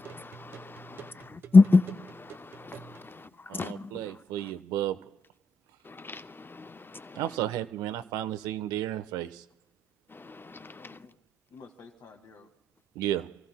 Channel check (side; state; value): both; normal; correlation 0.81